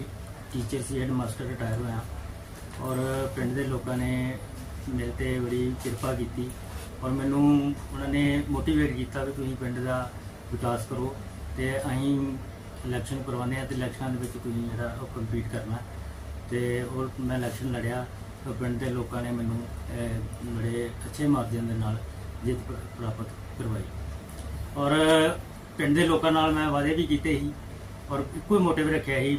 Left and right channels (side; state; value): both; identical; correlation 1.00